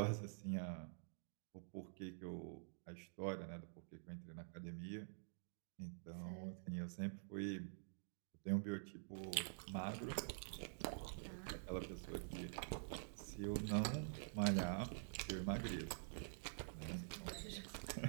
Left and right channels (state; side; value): silent; left; digital silence